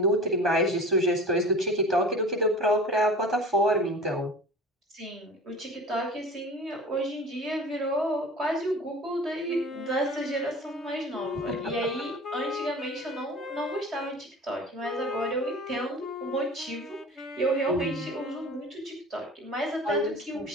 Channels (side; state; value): both; normal; correlation 0.39